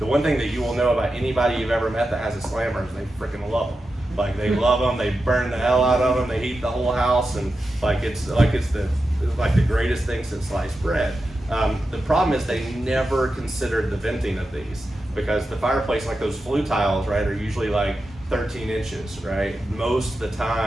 one thing that you will know about anybody you've ever met that has a slammer is they freaking love them. Like, they love them, they burn the hell out of them, they heat the whole house, and it's the greatest thing since sliced bread. The problem is they never considered the venting of these, because the fireplace, like those flue tiles, right, are usually like 13 inches, right? Most of the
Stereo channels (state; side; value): normal; both; correlation 0.90